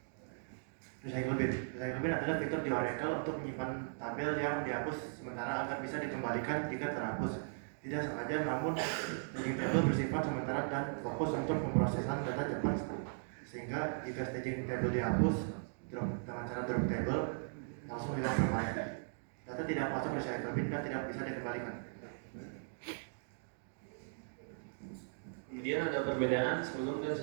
Recycle bin. Recycle bin adalah fitur di Oracle untuk menyimpan tabel yang dihapus sementara agar bisa dikembalikan jika terhapus tidak sengaja, namun staging table bersifat sementara dan fokus untuk pemrosesan data cepat, sehingga jika staging table dihapus dengan cara drop table langsung hilang permanen. Data tidak masuk recycle bin dan tidak bisa dikembalikan. Kemudian ada perbedaan sebelum dan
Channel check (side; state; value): left; silent; digital silence